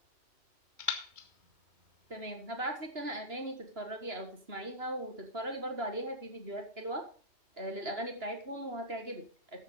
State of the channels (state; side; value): late; left; 2.9 ms